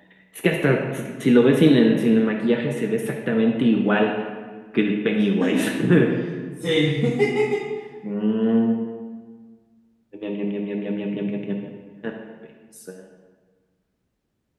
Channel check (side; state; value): both; identical; correlation 1.00